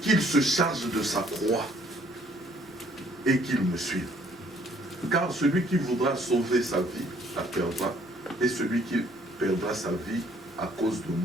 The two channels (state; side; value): normal; both; correlation 0.62